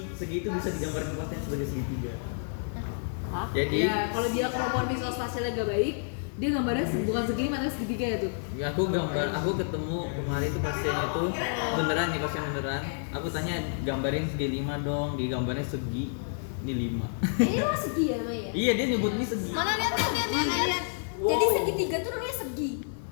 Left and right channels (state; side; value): silent; right; digital silence